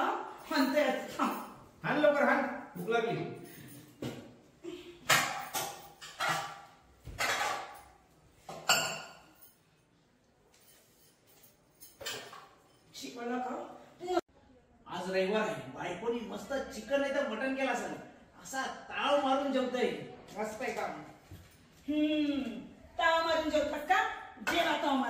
म्हणते. हान लवकर हान, भूक लागली. जेवायला खा. आज रविवार आहे, बायकोनी मस्त चिकन नाही तर मटन केला असेल. असा ताव मारून जेवतोय. मस्त आहे काम. ताव मारून जेवतात का? जेवा ताव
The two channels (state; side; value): identical; both; correlation 1.00